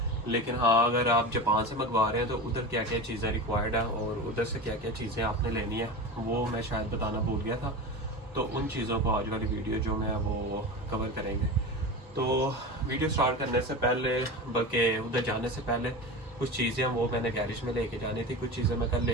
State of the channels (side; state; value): both; normal; correlation 0.27